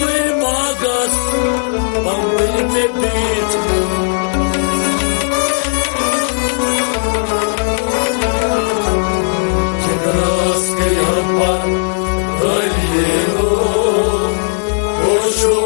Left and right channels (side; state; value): right; silent; 68 dB below the other